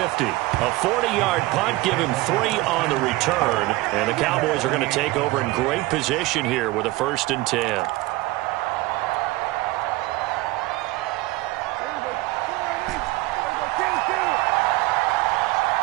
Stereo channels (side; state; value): left; quieter; 19.8 dB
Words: A 40-yard punt, give him 3 on the return. And the Cowboys are going to take over in great position here with a 1st and 10.